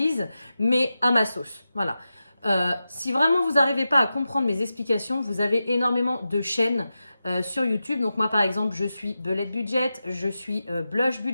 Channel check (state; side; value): inverted; both; correlation -0.92